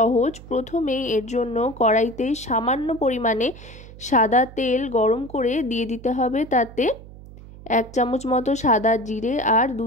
প্রথমেই এর জন্য কড়াইতে সামান্য পরিমাণে সাদা তেল গরম করে দিয়ে দিতে হবে। তাতে 1 চামচ মতো সাদা জিরে আর 2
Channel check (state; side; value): noise; right; hum, 17 dB below the sound